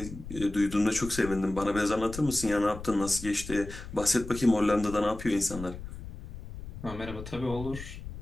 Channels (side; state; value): left; noise; rumble, 11 dB below the sound